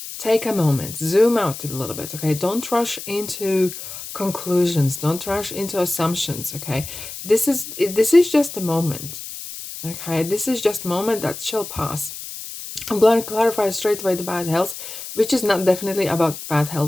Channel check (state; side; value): noise; left; hiss, 10 dB below the sound